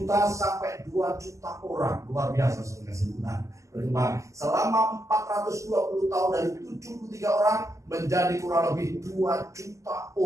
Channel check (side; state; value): left; late; 0.15 ms